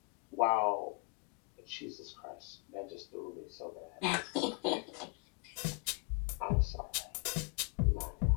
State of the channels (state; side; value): quieter; right; 33.1 dB